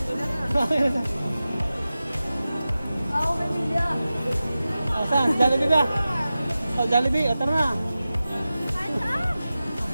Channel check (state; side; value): inverted; both; correlation -0.94